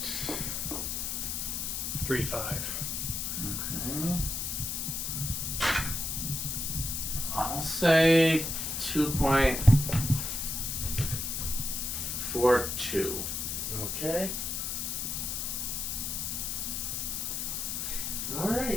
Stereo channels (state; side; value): noise; left; hiss, 2 dB below the sound